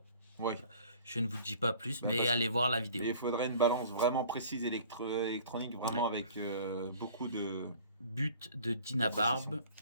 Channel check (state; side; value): inverted; both; correlation -0.50